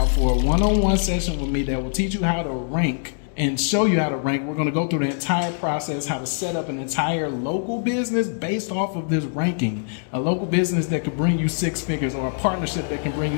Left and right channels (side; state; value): right; silent; digital silence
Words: for a one-on-one session with me that will teach you how to rank and show you how to rank. We're going to go through the entire process, how to set up an entire local business based off of this ranking. A local business that could bring you six figures, or a partnership that can bring you